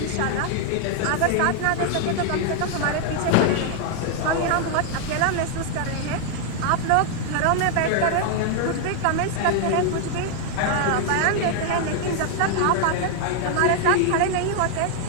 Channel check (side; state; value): both; different; correlation 0.00